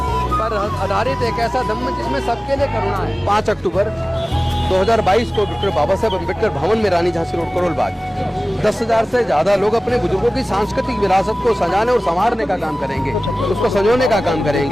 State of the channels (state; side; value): normal; both; correlation 0.98